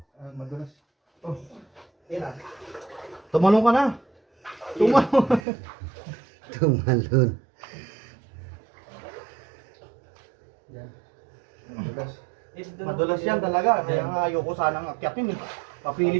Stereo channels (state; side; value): drops out; left; at 5.4 s